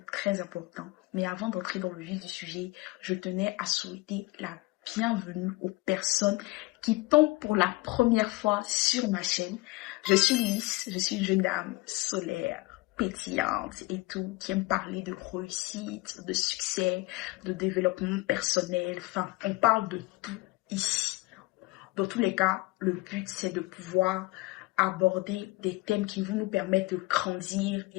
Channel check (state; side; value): quieter; right; 22.1 dB